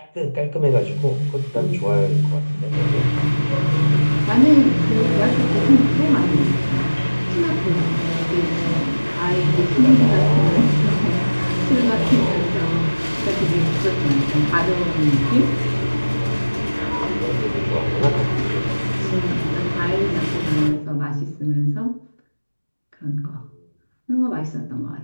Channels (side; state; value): both; inverted; correlation -1.00